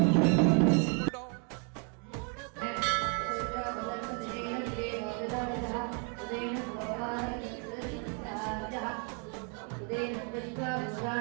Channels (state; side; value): quieter; left; 38.1 dB